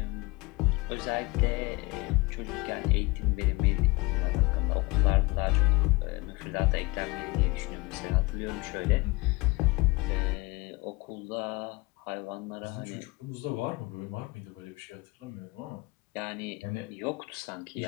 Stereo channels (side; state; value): right; quieter; 23.7 dB